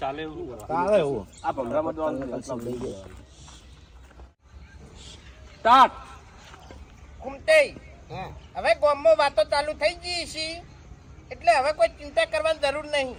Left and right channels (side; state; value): both; identical; correlation 1.00